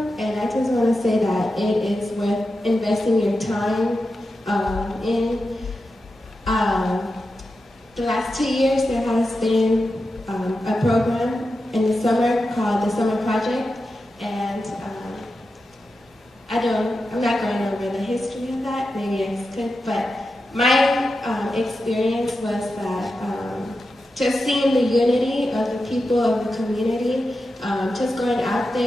and I just want to say that it is worth investing your time in. The last 2 years, there has been a program in the summer called the Summer Project, and I'm not going over the history of that, maybe I could, but my experience was that just seeing the unity of the people of the community, just going out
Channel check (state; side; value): normal; both; correlation 0.90